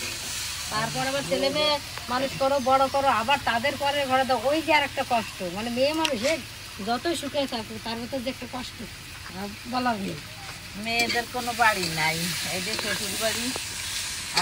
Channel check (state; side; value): identical; both; correlation 1.00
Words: তারপর আবার ছেলে মেয়ে মানুষ করো, বড় করো, আবার তাদের পরে ঘরে দাও, ওই যে আর একটা কষ্ট। মানে মেয়ে মানুষের যতই সুখে থাকুক তার ভিতর যে একটা কষ্ট বলার নেই। মেয়েদের কোনো বাড়ি নাই, এই যে শ্বশুর বাড়ি,